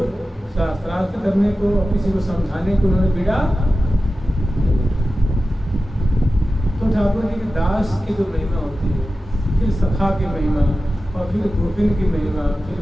शास्त्रार्थ करने को किसी को समझाने को उन्होंने बिड़ा। तो ठाकुर जी के दास की जो महिमा होती है, फिर सखा की महिमा और फिर गोपिन की महिमा,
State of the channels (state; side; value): normal; both; correlation 0.94